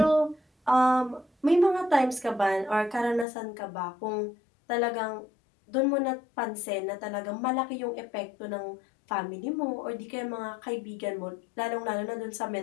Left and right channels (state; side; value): drops out; right; at 3.2 s